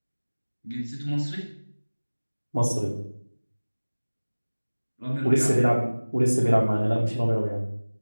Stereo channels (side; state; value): both; inverted; correlation -1.00